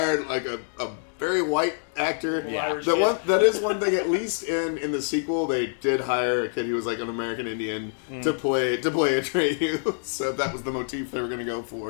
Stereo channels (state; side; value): silent; right; digital silence